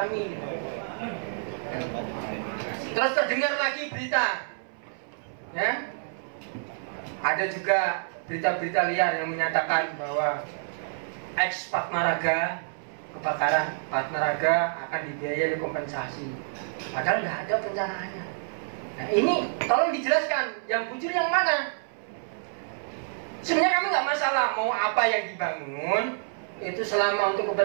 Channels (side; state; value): left; silent; 59 dB below the other